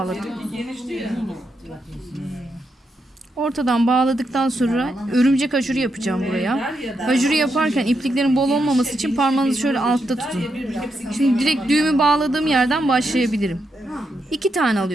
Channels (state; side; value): normal; both; correlation 0.82